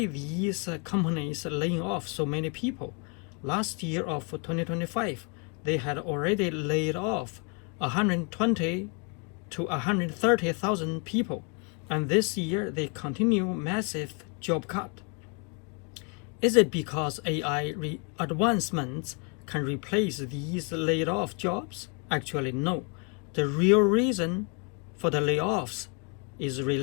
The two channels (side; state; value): right; quieter; 36.8 dB